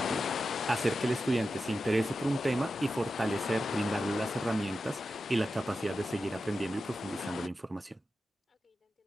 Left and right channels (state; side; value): normal; both; correlation 0.91